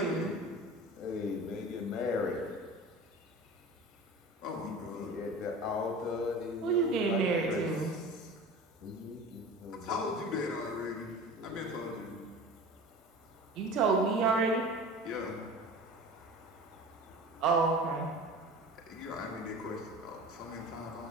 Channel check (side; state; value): both; normal; correlation 0.37